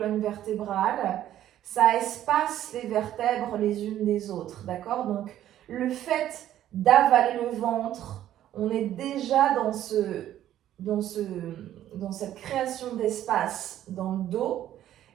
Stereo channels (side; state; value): left; quieter; 12.1 dB